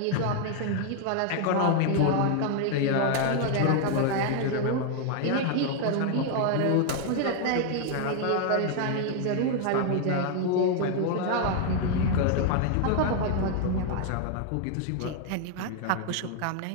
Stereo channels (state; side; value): different; both; correlation 0.00